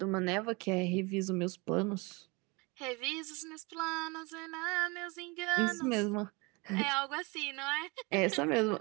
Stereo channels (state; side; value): quieter; left; 26.9 dB